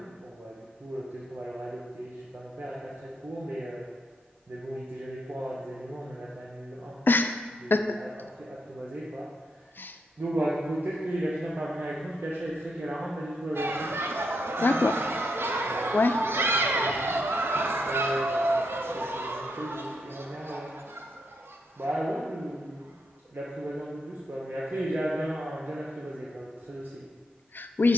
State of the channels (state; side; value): normal; both; correlation 0.79